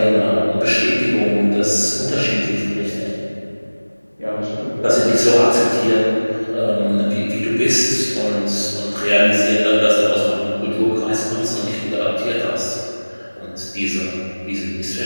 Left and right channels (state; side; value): inverted; both; correlation -1.00